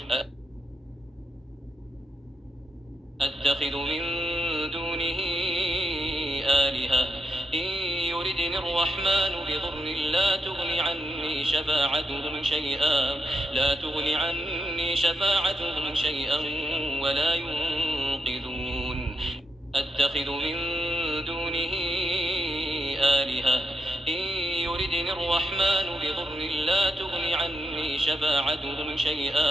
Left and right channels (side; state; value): both; normal; correlation 0.82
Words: أتخذ من دونه آلهة إن يردني الرحمن بضر لا تغن عني شفاعتهم شيئا ولا ينقذون أتخذ من دونه آلهة إن يردني الرحمن بضر لا تغن عني